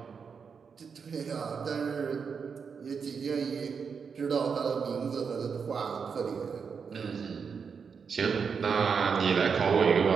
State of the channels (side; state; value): left; quieter; 6.0 dB